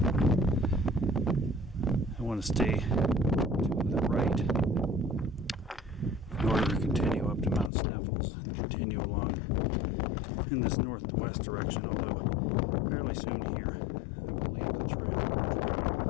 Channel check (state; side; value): drops out; right; at 7.7 s